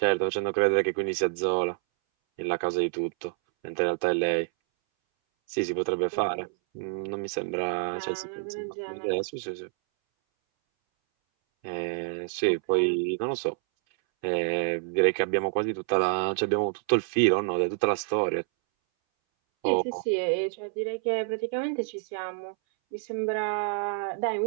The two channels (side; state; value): left; silent; 59 dB below the other